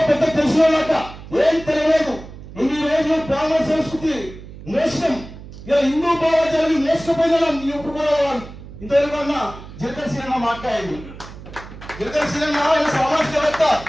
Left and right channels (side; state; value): right; noise; hum, 15 dB below the sound